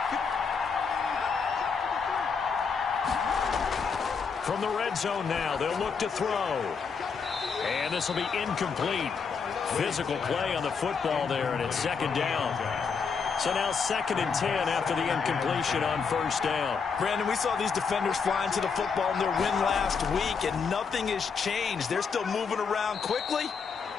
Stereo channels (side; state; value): right; quieter; 5.7 dB